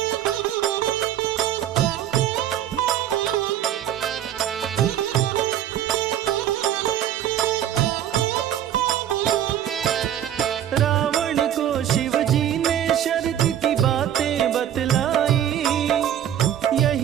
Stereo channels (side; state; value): left; quieter; 10.7 dB